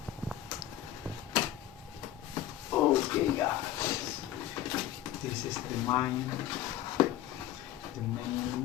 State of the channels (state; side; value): quieter; right; 12.8 dB